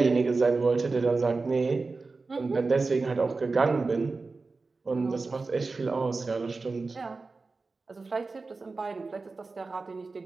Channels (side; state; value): left; quieter; 3.9 dB